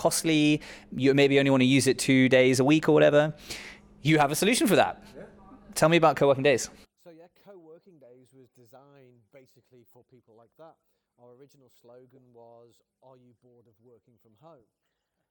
You maybe only want to use it 2 days a week or whatever. You have a solution for that. Tell me about co-working days. So yeah, co-working days was designed basically for people like that. Our original slogan was, "Are you bored of working from home?"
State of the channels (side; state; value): both; identical; correlation 1.00